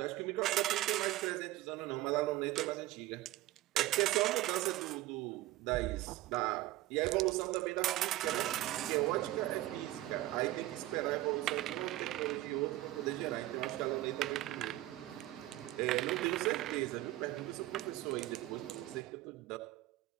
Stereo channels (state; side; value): quieter; left; 16.4 dB